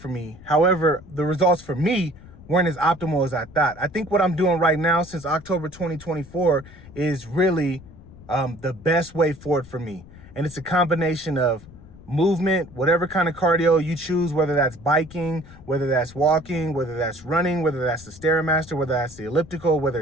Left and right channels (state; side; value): noise; left; rumble, 20 dB below the sound